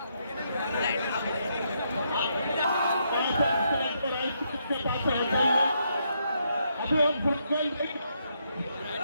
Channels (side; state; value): both; inverted; correlation -0.77